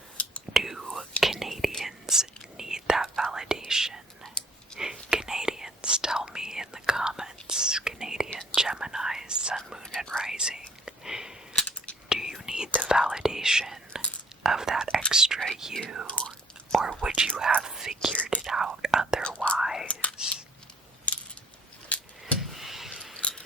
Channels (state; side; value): normal; both; correlation 0.58